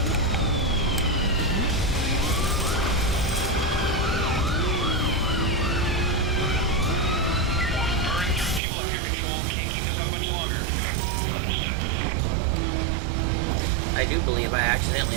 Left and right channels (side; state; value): left; drops out; at 8.6 s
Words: I do believe I